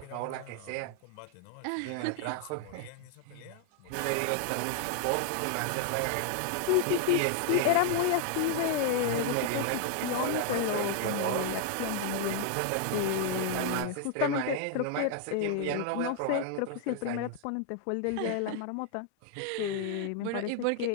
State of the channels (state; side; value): different; both; correlation 0.00